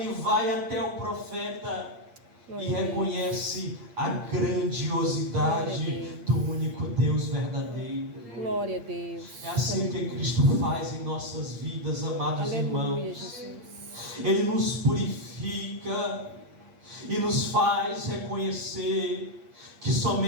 vai até o profeta e reconhece a grandiosidade do único Deus verdadeiro. Glória a Deus. É assim que Cristo faz em nossas vidas, amados Aleluia, irmãos. Jesus. Ele nos purifica e nos faz reconhecer que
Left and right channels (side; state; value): left; late; 8.6 ms